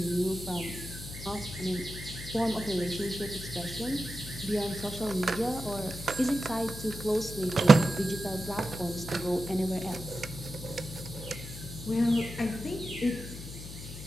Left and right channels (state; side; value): noise; left; hum, 11 dB below the sound